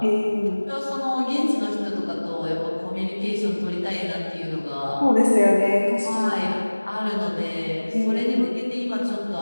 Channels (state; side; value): inverted; both; correlation -1.00